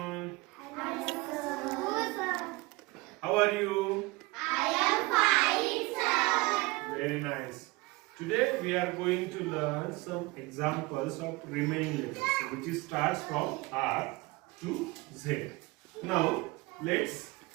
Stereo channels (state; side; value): quieter; left; 23.4 dB